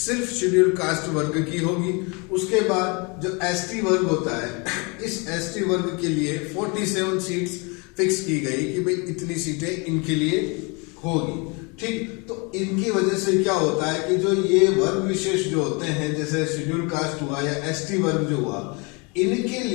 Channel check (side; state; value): right; quieter; 30.5 dB